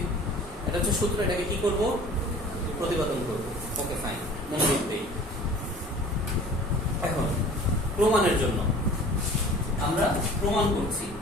এটা হচ্ছে সূত্র, এটাকে কি করব? প্রতিপাদন করব। ওকে, ফাইন, মনোযোগ দেই। এখন প্রমাণের জন্য আমরা প্রমাণ করছি।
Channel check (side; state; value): both; normal; correlation 0.45